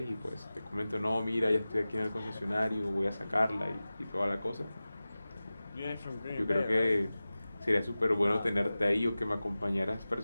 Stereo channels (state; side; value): inverted; both; correlation -0.96